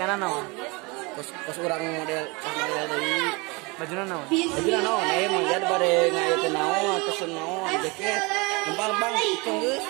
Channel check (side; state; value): left; quieter; 27.3 dB